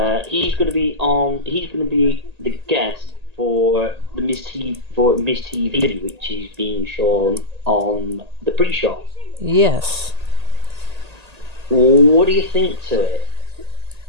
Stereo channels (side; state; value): left; late; 1.8 ms